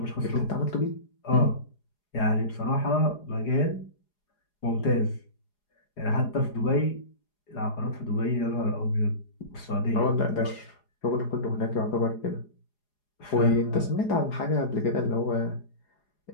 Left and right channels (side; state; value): right; late; 4.8 ms